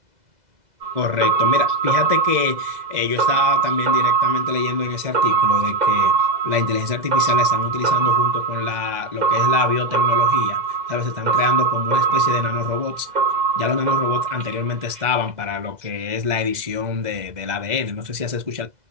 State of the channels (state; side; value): late; left; 2.0 ms